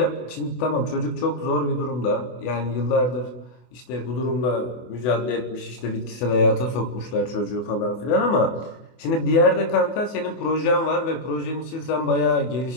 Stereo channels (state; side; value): late; right; 24 ms